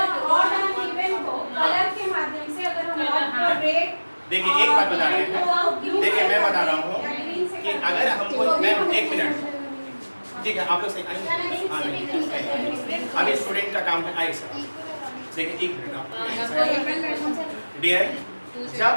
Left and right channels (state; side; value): inverted; both; correlation -1.00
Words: ऑड एंड इवन को कलर के माध्यम से अगर हम ऑड को रेट, देखिए एक बात बता रहे हैं, देखिए मैं बता रहा हूँ कि अगर हमको, मैम एक मिनट, ठीक है आप लोग सही आइए, अभी स्टूडेंट का काम है, आइए सर। देखिए एक मिनट डियर, जब